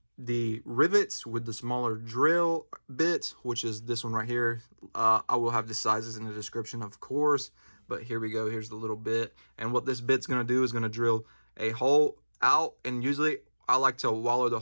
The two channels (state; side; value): inverted; both; correlation -1.00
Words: the rivets with the smaller drill bit, which is this one right here. I will have the sizes in the description, of course, but here we go. Here's the little bit, and what this bit's going to do is going to drill a hole out, and usually I like to wallow the